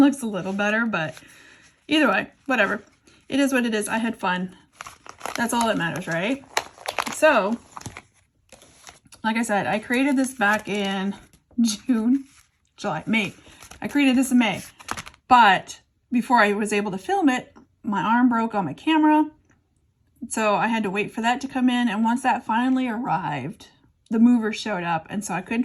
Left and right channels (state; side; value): identical; both; correlation 1.00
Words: a little better, but either way, whatever. It is what it is. I had fun. That's all that matters, right? So, like I said, I created this back in May. I created this in May. But before I was able to film it, my arm broke on my camera. So I had to wait for that to come in. And once that finally arrived, the movers showed up, and so I couldn't